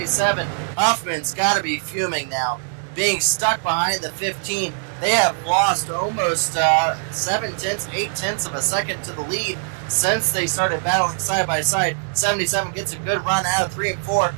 Huffman's got to be fuming now, being stuck behind the 15. They have lost almost 7/10, 8/10 of a second to the lead since they started battling side by side. 77 gets a good run out of 3 and 4.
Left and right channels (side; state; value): left; silent; digital silence